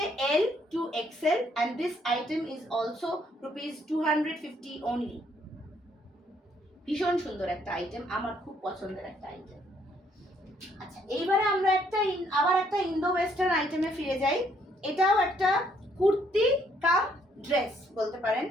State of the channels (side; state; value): both; normal; correlation 0.68